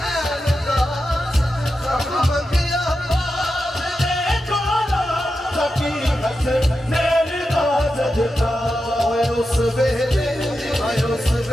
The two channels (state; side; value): normal; both; correlation 0.90